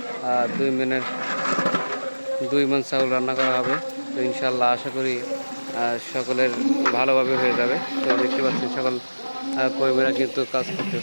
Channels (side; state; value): both; inverted; correlation -1.00